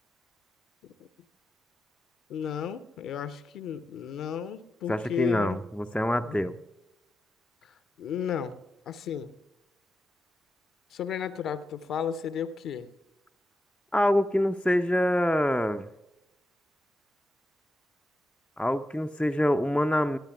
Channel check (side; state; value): both; normal; correlation 0.89